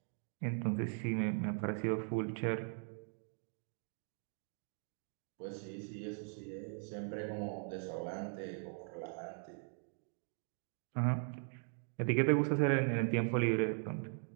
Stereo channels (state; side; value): silent; left; 51 dB below the other